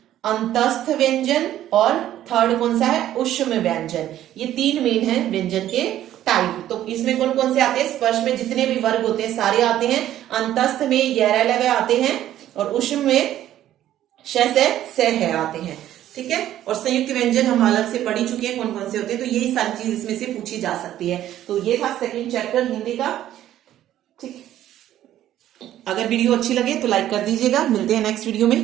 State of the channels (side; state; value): left; quieter; 12.4 dB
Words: अंतस्थ व्यंजन, और थर्ड कौन सा है, ऊष्म व्यंजन। ये तीन मेन है व्यंजन के टाइप। तो इसमें कौन कौन से आते हैं, स्पर्श में जितने भी वर्ग होते हैं सारे आते हैं, अंतस्थ में यह लगे आते हैं, और ऊष्म में श से है आते हैं। ठीक है, और संयुक्त व्यंजन हम अलग से पढ़ ही चुके हैं कौन कौन से होते हैं, तो यही सारी चीज इसमें से पूछी जा सकती है। तो ये था सेकंड चैप्टर हिंदी का। ठीक, अगर वीडियो अच्छी लगे तो लाइक कर दीजिएगा। मिलते हैं नेक्स्ट वीडियो